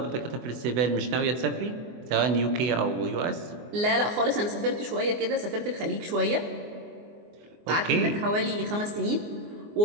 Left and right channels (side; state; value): left; late; 24 ms